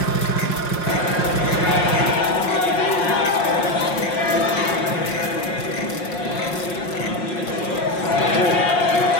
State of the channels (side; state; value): right; late; 5.6 ms